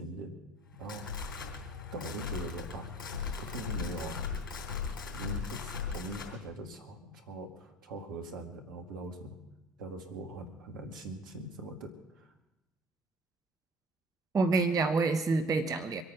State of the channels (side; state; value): both; normal; correlation 0.49